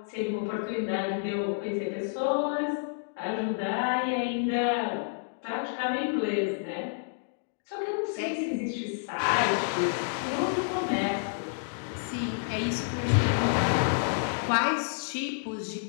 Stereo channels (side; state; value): right; silent; digital silence